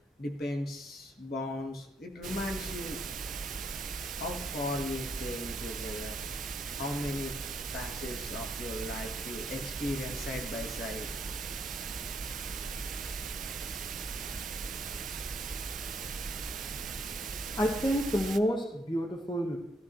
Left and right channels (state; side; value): normal; both; correlation 0.72